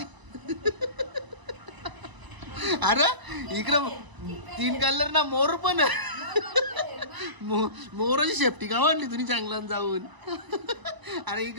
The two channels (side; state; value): left; late; 1.0 ms